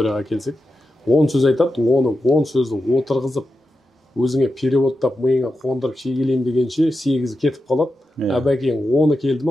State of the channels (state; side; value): normal; both; correlation 0.90